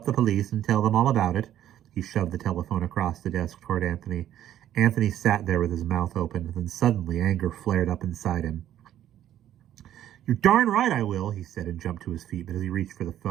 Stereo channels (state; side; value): quieter; left; 11.7 dB